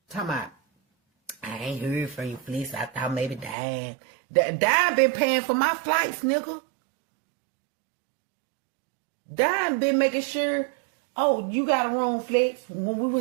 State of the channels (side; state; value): left; drops out; at 3.6 s